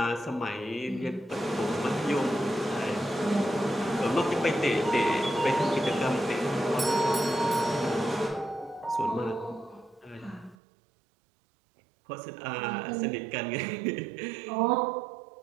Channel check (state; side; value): drops out; left; at 10.6 s